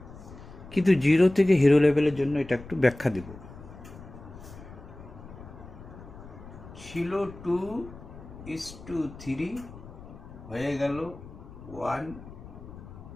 কিন্তু 0 থেকে হিরো লেভেলের জন্য এটা একটু ব্যাখ্যা দেব। ছিল 2:3, হয়ে গেল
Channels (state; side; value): noise; left; rumble, 16 dB below the sound